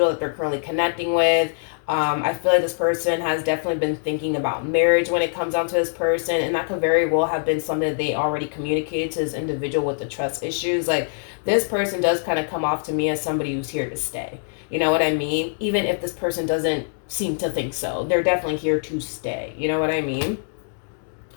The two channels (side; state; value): right; silent; digital silence